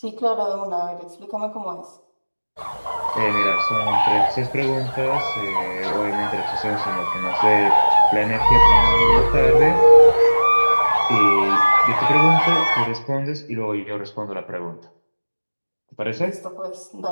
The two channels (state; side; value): inverted; both; correlation -1.00